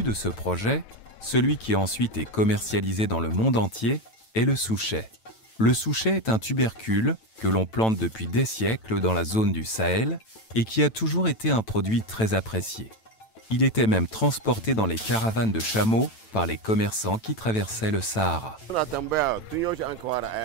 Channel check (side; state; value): right; late; 9.0 ms